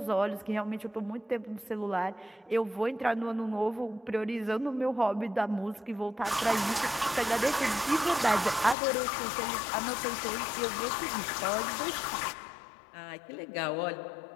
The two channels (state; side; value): drops out; right; at 8.8 s